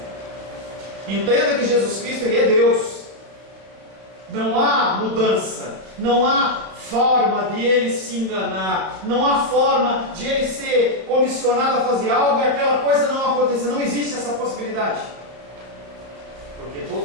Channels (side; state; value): left; late; 32 ms